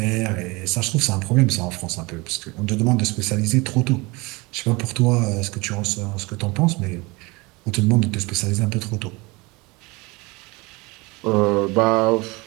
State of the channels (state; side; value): quieter; left; 24.8 dB